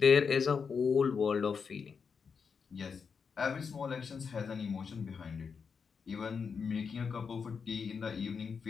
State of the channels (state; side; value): quieter; right; 5.9 dB